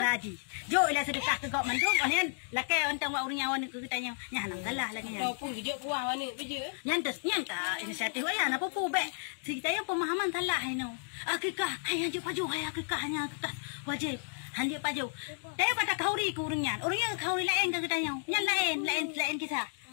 ji. Jo ila sedekah ke gok mandum onian lakai ontang wa urang nyawan ke tanya. Nya hanang salah lagi nya. Kau pun gejok kuah wane beje. Nyan ta inisiatif aya na popo be. Kita yang pemahaman salah no. Akikah hai hanje paju hai akikah hanya akikah wajib. Hanje paju. Tapi kata kauri ke urang nyan. Urang yang kauri lain ke tanya. Nyan lain kisah.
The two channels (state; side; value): silent; right; digital silence